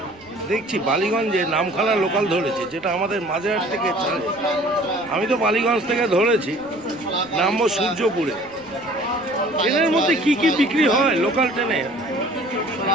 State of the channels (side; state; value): right; noise; rumble, 28 dB below the sound